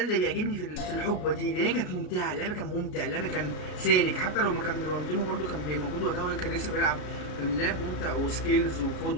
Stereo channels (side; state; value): right; late; 33 ms